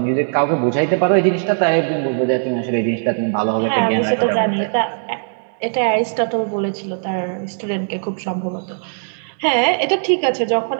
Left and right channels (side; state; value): left; silent; digital silence